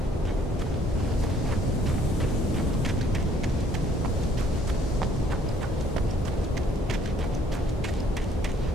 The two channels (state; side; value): normal; both; correlation 0.62